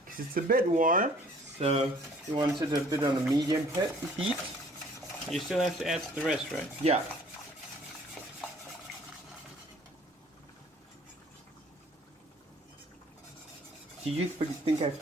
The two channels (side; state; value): both; normal; correlation 0.55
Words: because it's a bit warm. So you want it a bit on a medium heat. You still have to add the rest, right? Yeah. Do you think I